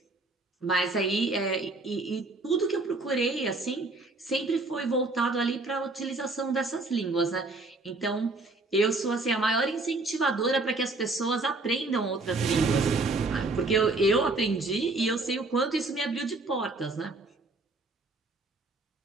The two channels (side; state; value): left; quieter; 3.2 dB